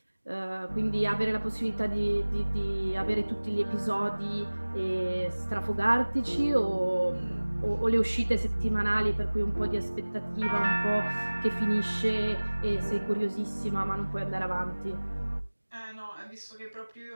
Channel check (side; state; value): both; inverted; correlation -1.00